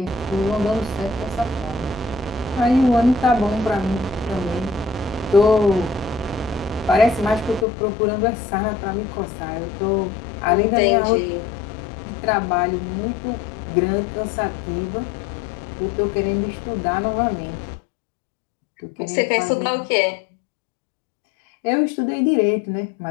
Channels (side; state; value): right; drops out; at 7.7 s